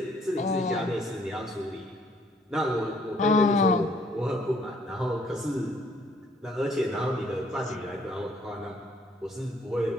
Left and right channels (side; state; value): both; normal; correlation 0.64